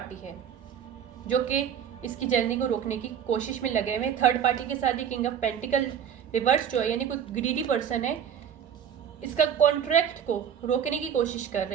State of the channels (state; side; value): quieter; left; 8.6 dB